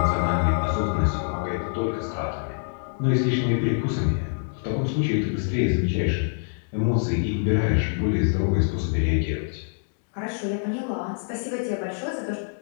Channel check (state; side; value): silent; right; digital silence